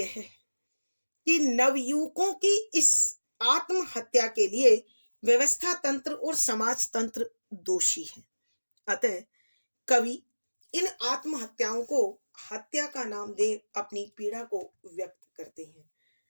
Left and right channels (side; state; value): both; inverted; correlation -1.00